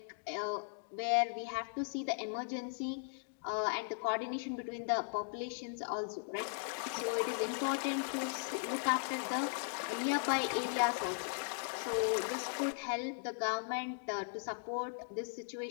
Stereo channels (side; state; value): right; silent; digital silence